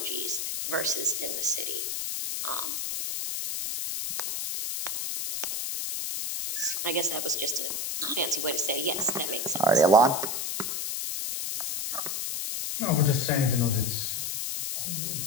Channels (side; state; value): left; noise; hiss, 2 dB below the sound